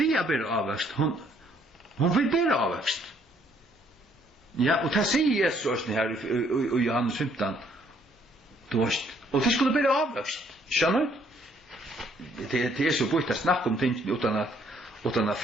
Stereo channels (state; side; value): normal; both; correlation 0.66